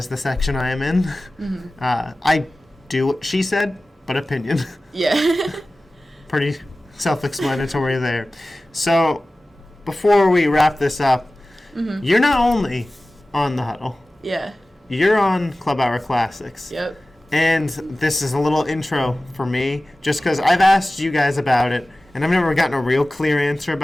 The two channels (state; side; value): normal; both; correlation 0.96